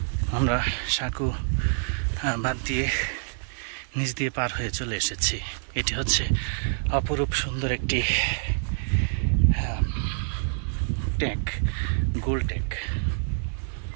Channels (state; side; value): silent; left; digital silence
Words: আমরা সাঁকো বাদ দিয়ে নিচ দিয়ে পার হয়ে চলে এসেছি। এটি হচ্ছে অপরূপ সুন্দর একটি ট্যাঙ্ক, গোল ট্যাঙ্ক।